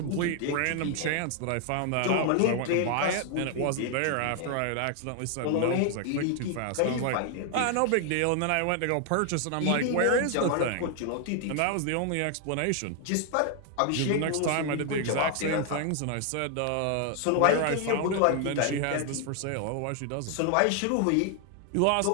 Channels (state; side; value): different; both; correlation 0.00